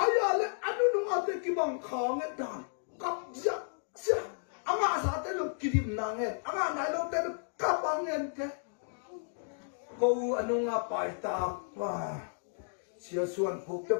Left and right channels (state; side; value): silent; right; digital silence